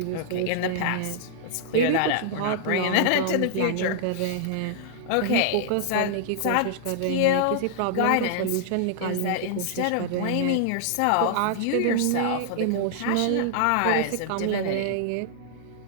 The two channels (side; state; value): both; different; correlation -0.01